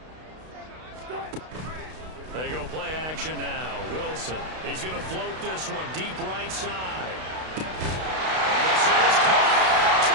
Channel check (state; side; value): late; left; 32 ms